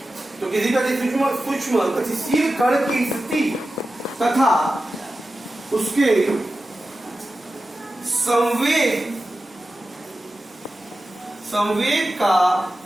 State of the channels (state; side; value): normal; both; correlation 0.93